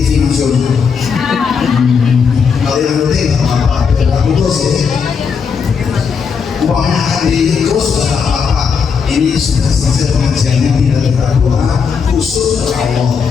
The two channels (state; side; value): quieter; right; 6.0 dB